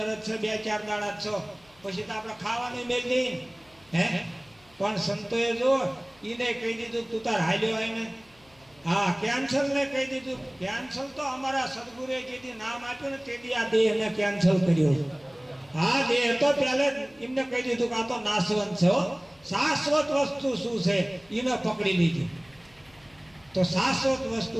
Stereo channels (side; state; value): left; noise; hum, 29 dB below the sound